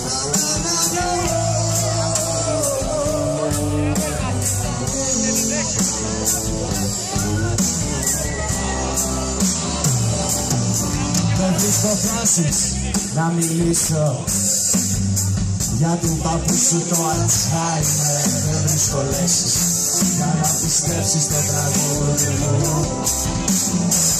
Δεν βρίσκω φράσεις να μιλήσω για του παππού σου το Αλτσχάιμερ. Δεν βρίσκω λέξεις για να πιστέψεις το τραγούδι μου.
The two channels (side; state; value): both; identical; correlation 1.00